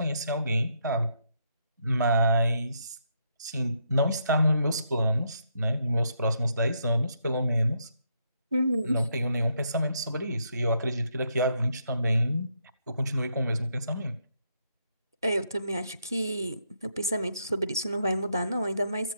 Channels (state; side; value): inverted; both; correlation -0.76